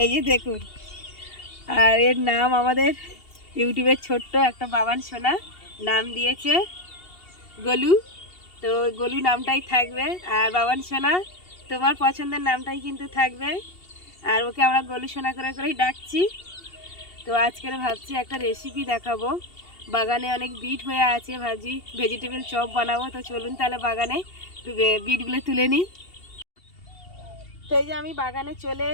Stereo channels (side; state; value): right; late; 2.7 ms